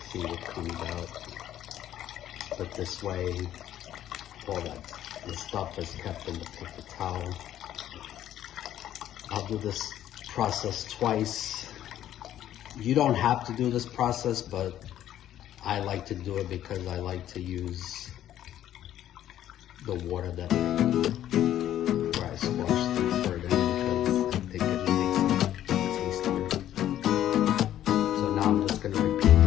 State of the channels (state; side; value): quieter; right; 11.8 dB